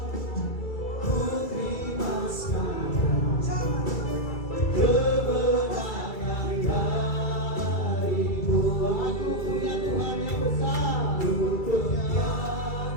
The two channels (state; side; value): late; right; 2.3 ms